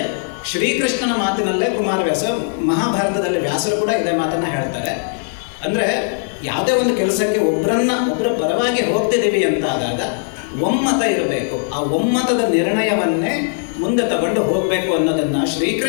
ಶ್ರೀಕೃಷ್ಣನ ಮಾತಿನಲ್ಲೇ ಕುಮಾರವ್ಯಾಸ, ಮಹಾಭಾರತದಲ್ಲಿ ವ್ಯಾಸರು ಕೂಡ ಇದೇ ಮಾತನ್ನು ಹೇಳ್ತಾರೆ. ಅಂದರೆ ಯಾವುದೇ ಒಂದು ಕೆಲಸಕ್ಕೆ ಒಬ್ಬರ ಪರವಾಗಿ ಹೋಗ್ತಿದ್ದೀವಿ ಅಂತಾದಾಗ ಒಮ್ಮತ ಇರಬೇಕು. ಆ ಒಮ್ಮತದ ನಿರ್ಣಯವನ್ನೇ ಮುಂದೆ ತಗೊಂಡು ಹೋಗಬೇಕು ಅನ್ನೋದನ್ನು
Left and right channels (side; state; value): right; silent; digital silence